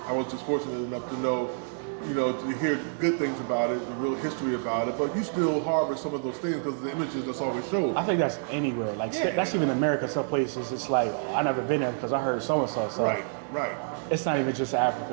I was just fortunate enough to know, you know, to hear good things about it, the real history about it, but you still harbor some of those things because the images that's always showed. I think that's anywhere. Like, that's even America. Some places, it's like, I never been there because I heard so-and-so. So right. It's not even just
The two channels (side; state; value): left; silent; digital silence